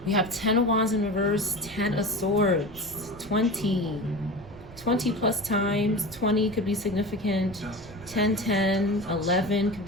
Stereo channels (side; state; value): right; noise; rumble, 19 dB below the sound